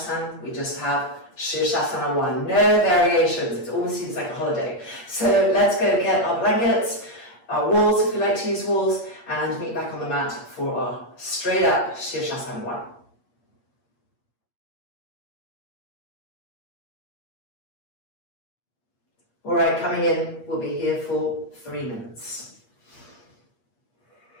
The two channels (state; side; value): late; right; 8.5 ms